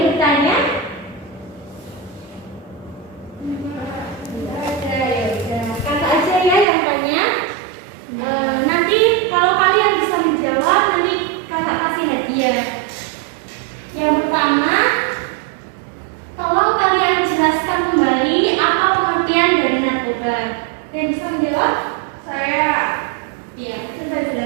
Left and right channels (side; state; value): left; drops out; at 6.7 s